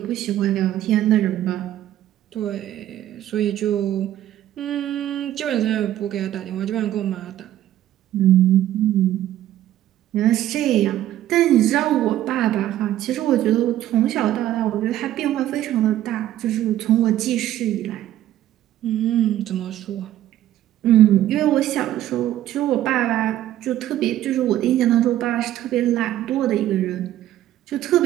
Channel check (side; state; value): left; quieter; 12.9 dB